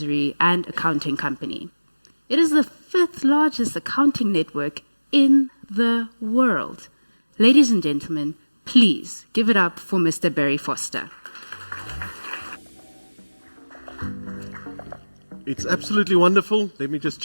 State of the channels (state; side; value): inverted; both; correlation -1.00